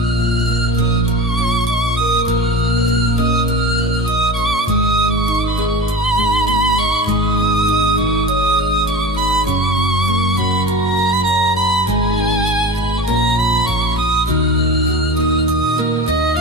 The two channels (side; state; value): both; normal; correlation 0.32